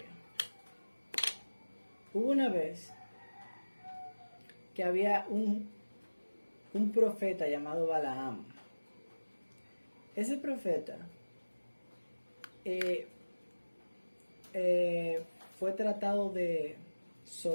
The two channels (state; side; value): inverted; both; correlation -1.00